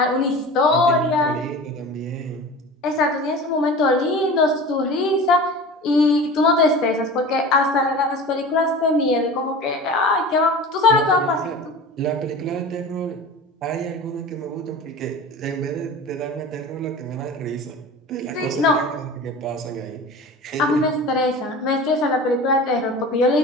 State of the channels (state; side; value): normal; both; correlation 0.36